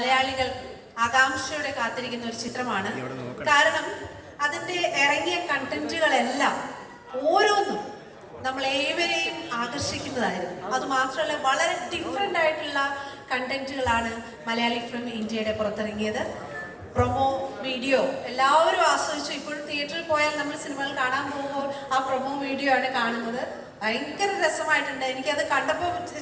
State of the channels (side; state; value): both; identical; correlation 1.00